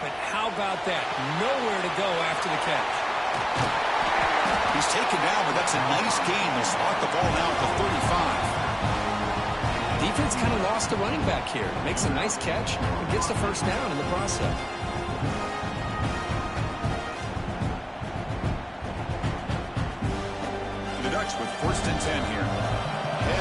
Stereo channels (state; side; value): identical; both; correlation 1.00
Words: how about that? Nowhere to go after the catch. He's taken down, but that's a nice gain. They'll spot the ball now at the 35. Defense kind of lost the running back here. Makes a nice catch and gets the first down in the process. With 1st and 10 here.